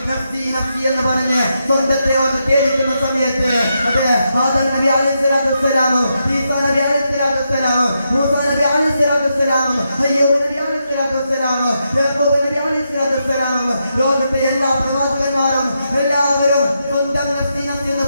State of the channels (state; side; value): inverted; both; correlation -0.83